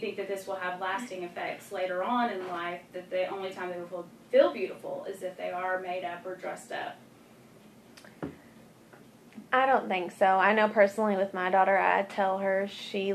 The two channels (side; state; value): both; identical; correlation 1.00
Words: that this will have lasting effects later on in life, that the only time they will feel beautiful is if they are made up or dressed up? I don't think so. I know personally with my daughter, I tell her she